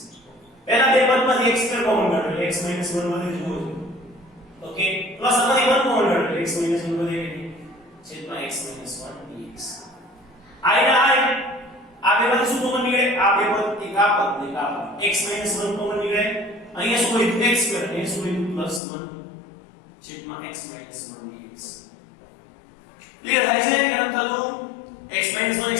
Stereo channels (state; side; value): drops out; right; at 18.8 s